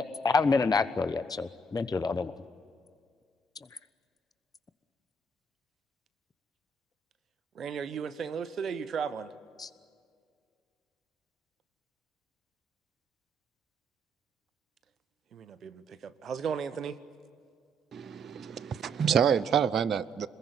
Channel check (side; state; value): both; normal; correlation 0.70